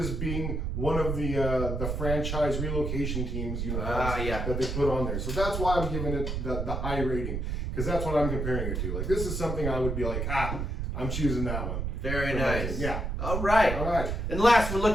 being one of the franchise relocation teams that they put on there. So that's why I'm giving it the high rating, because that's what I'm comparing it to. Like, this is something I would be like, I'm choosing that one. Very nice. Yeah. All right. And last, we're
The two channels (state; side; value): noise; right; rumble, 2 dB below the sound